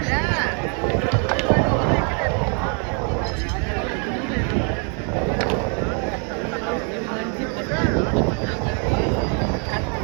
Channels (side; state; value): left; quieter; 38.9 dB